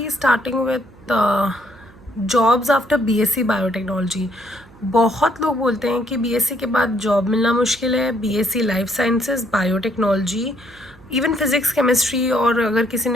starting with jobs after BSc Biotechnology. बहुत लोग बोलते हैं कि बीएससी के बाद जॉब मिलना मुश्किल है. BSc life sciences, biotechnology, even physics chemistry, और अगर किसी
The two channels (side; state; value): right; noise; hum, 25 dB below the sound